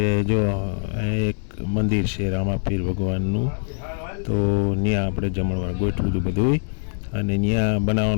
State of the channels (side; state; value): right; silent; 63 dB below the other